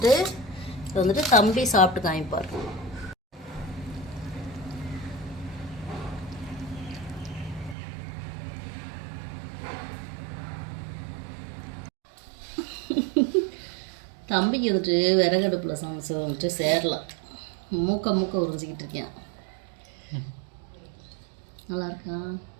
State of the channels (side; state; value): left; drops out; at 7.8 s